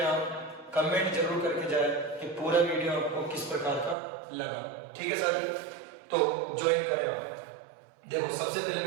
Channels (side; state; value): left; drops out; at 4.0 s